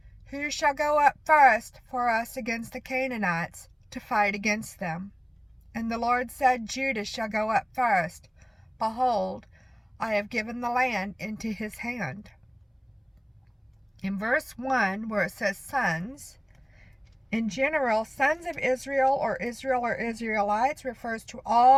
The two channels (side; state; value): both; identical; correlation 1.00